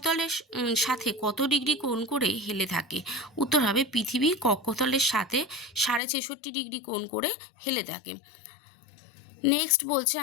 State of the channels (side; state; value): right; drops out; at 6.0 s